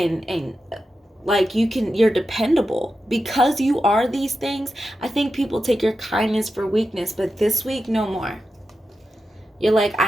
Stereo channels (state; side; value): normal; both; correlation 0.90